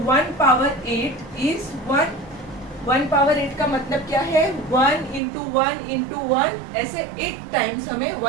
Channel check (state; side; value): drops out; left; at 5.2 s